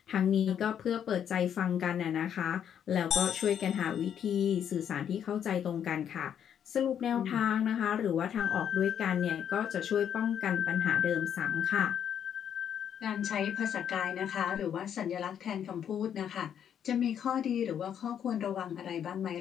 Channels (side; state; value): right; quieter; 8.9 dB